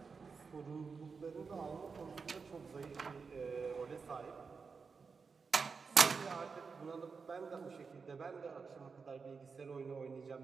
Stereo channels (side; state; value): left; quieter; 5.1 dB